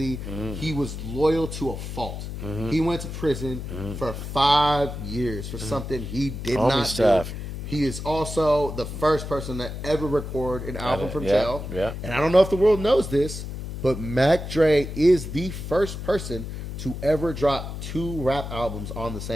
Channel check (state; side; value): noise; left; hum, 7 dB below the sound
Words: he was loyal to a fault. He went to prison for 5 years for something he did not do. He is also the first person to ever record an album from jail. Yeah. And I don't know if the world knows this, but Mac Dre is the first person to ever drop 2 rap albums on the